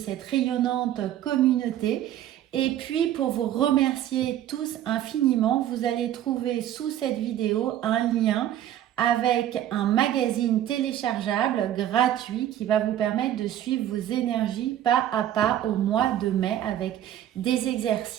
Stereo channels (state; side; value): quieter; left; 11.7 dB